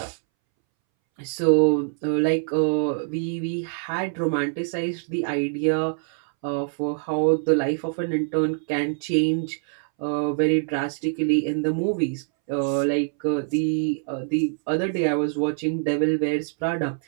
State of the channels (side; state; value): left; silent; 62 dB below the other